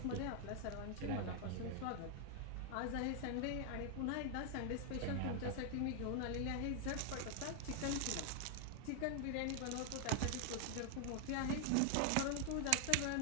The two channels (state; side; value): different; both; correlation 0.00